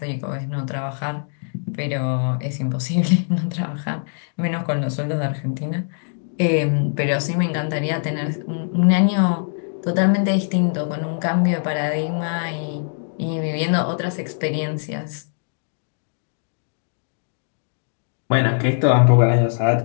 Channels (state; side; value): silent; right; digital silence